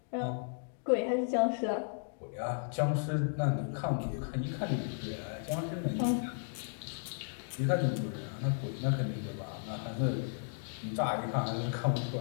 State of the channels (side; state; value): right; silent; digital silence